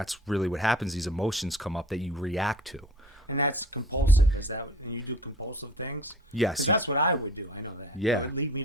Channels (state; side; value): normal; both; correlation 0.43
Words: really what happens. These emotions come up that you react to. And that's compulsive. Is that when you do compulsive things? Yes. That's what I would do. I know that. Yeah. It would lead me